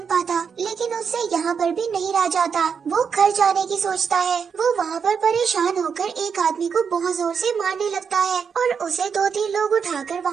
पाता। लेकिन उससे यहाँ पर भी नहीं रह जाता। वो घर जाने की सोचता है। वो वहाँ पर परेशान होकर एक आदमी को बहुत जोर से मारने लगता है और उसे 2-3 लोग उठाकर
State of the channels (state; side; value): quieter; left; 6.4 dB